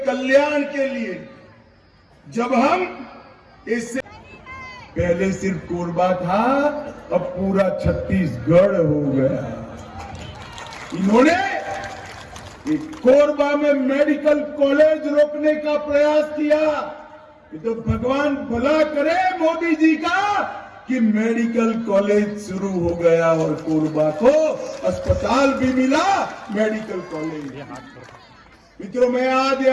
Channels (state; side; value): identical; both; correlation 1.00